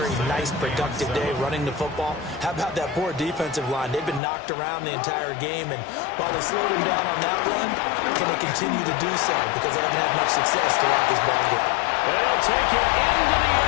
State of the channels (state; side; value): drops out; right; at 4.2 s